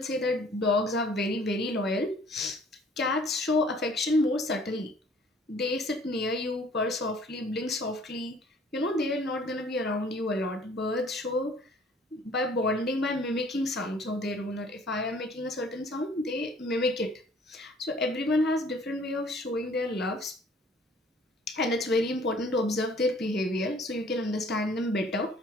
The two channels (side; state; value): both; normal; correlation 0.55